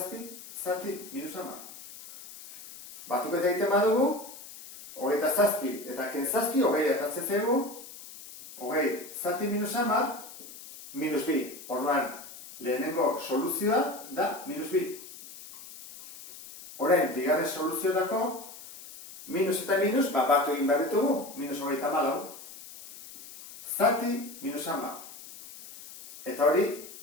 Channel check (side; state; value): left; noise; hiss, 15 dB below the sound